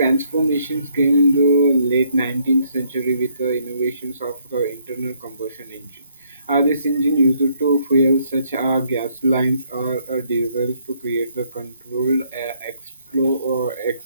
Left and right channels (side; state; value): both; inverted; correlation -0.69